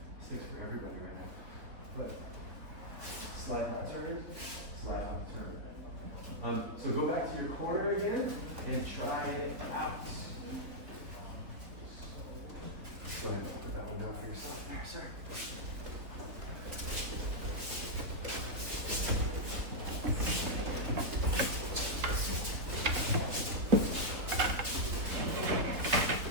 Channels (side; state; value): left; late; 3.9 ms